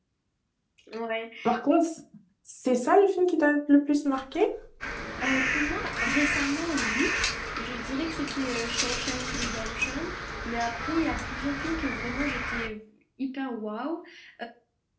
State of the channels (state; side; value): identical; both; correlation 1.00